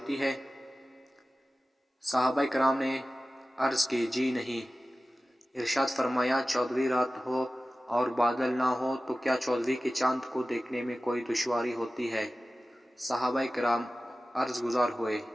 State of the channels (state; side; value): normal; both; correlation 0.96